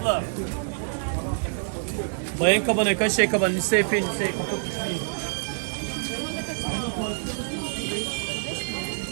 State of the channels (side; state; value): left; silent; 61 dB below the other